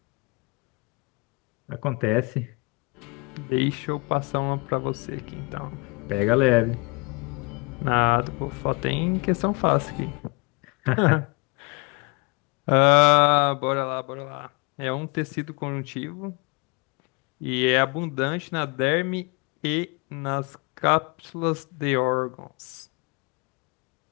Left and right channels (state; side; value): quieter; right; 29.9 dB